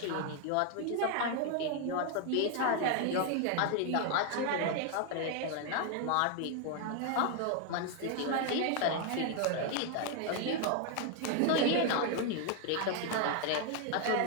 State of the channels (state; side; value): different; both; correlation 0.01